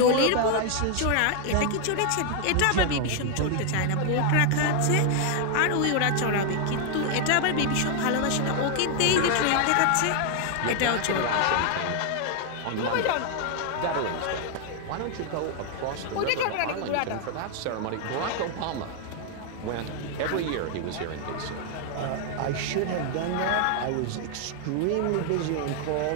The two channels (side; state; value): both; different; correlation 0.00